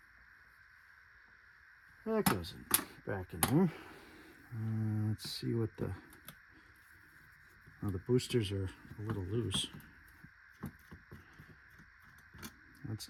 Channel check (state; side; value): identical; both; correlation 1.00